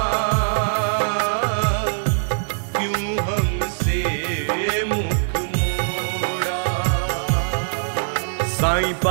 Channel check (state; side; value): silent; left; 64 dB below the other